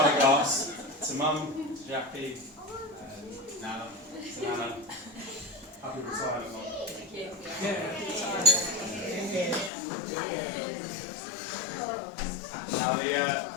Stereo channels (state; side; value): drops out; right; at 9.7 s